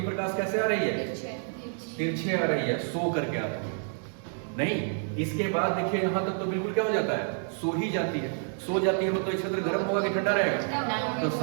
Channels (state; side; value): silent; left; 59 dB below the other